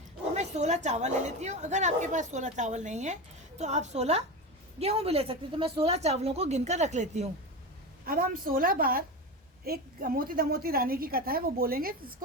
तो मैं 16 चावल ले लेती हूँ। अगर आपके पास 16 चावल नहीं है तो आप 16 गेहूँ भी ले सकते हो। तो मैं 16 चावलों को गिनकर रख लेती हूँ। अब हम 16 बार, एक मोती दमोती रानी की कथा है वो बोलेंगे,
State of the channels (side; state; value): both; normal; correlation 0.22